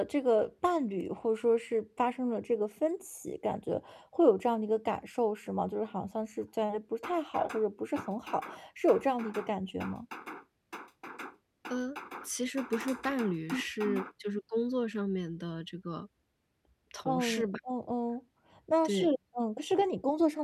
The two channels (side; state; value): both; identical; correlation 1.00